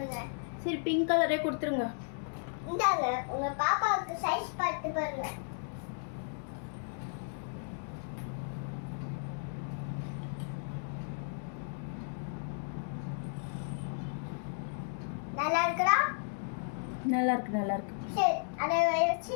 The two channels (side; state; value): right; silent; digital silence